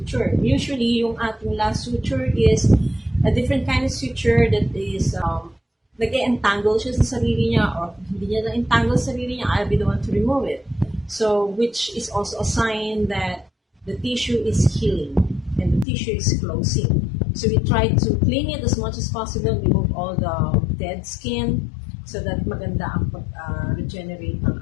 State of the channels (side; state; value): right; drops out; at 15.9 s